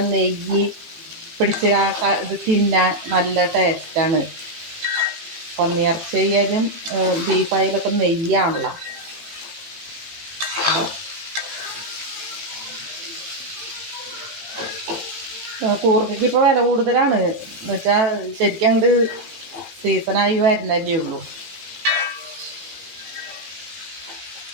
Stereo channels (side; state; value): left; late; 18 ms